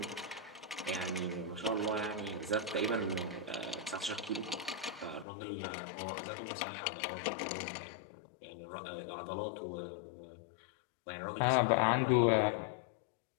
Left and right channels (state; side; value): drops out; right; at 5.2 s